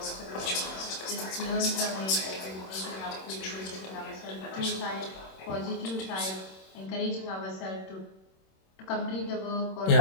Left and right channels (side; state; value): right; late; 26 ms